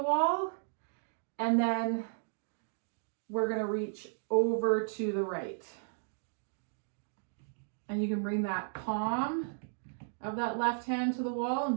wall, and then we're gonna reach over to the right. And you can bring that palm of that left hand to the wall and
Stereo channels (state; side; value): silent; left; digital silence